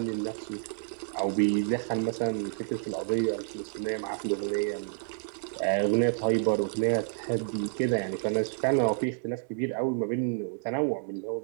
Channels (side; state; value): left; silent; digital silence